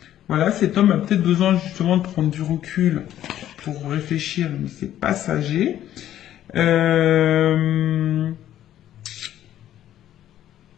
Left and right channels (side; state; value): right; quieter; 12.0 dB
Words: Voilà, cet homme a peut-être besoin justement de prendre du recul pour réfléchir, mais c'est passager.